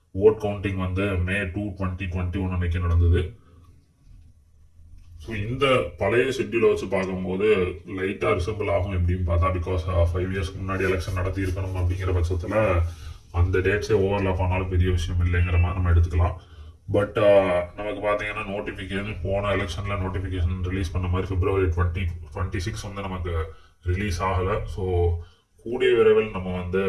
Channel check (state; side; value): identical; both; correlation 1.00